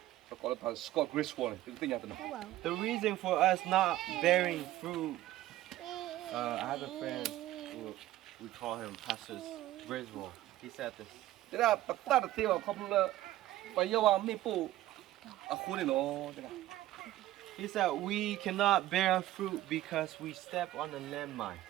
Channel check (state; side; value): quieter; left; 15.1 dB